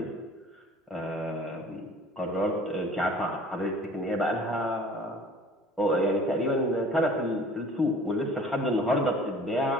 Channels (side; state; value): both; normal; correlation 0.48